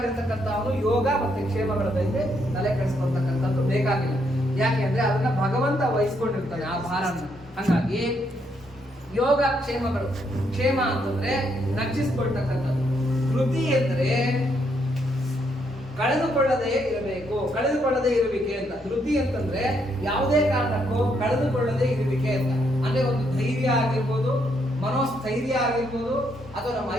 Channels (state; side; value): normal; both; correlation 0.75